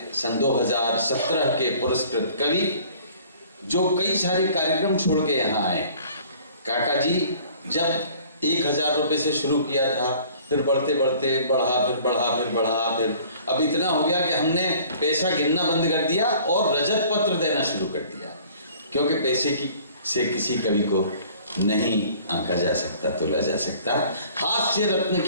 सन 2017 के पुरस्कृत कवि जो कई सारे कार्यक्रम छोड़ के यहाँ आए। काका जी जब 1000 रुपये से शुरू किया था, फिर बढ़ते बढ़ते बढ़ा, फिर अब इतना हो गया कि हमने पैसा गिनना बंद कर दिया और रजत पत्र देना शुरू कर दिया, क्योंकि पैसे से किसी कवि को नहीं आंका जा सकता, तोला जा सकता। हास्य रत्न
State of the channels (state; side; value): inverted; both; correlation -0.52